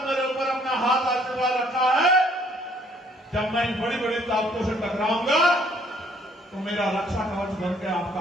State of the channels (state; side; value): normal; both; correlation 0.63